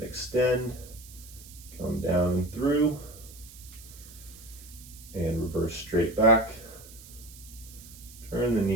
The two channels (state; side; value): noise; right; hiss, 18 dB below the sound